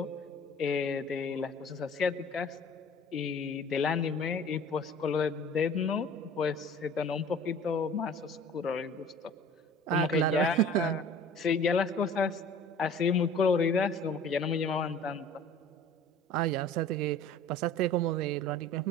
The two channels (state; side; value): normal; both; correlation 0.45